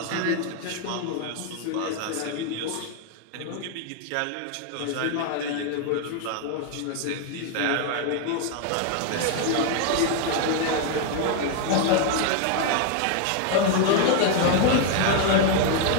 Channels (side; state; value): both; different; correlation 0.00